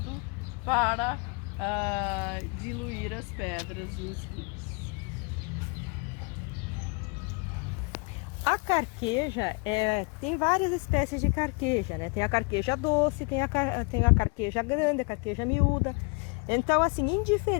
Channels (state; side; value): quieter; right; 32.2 dB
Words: para diluir as pedras nos rins. A carqueja, tem várias espécies de carqueja, né? Tem a carqueja doce, tem a carqueja grande, a carqueja miúda. Então, assim,